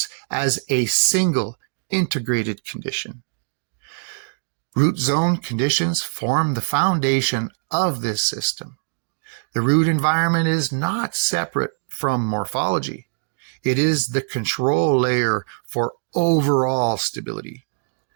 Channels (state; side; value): silent; left; digital silence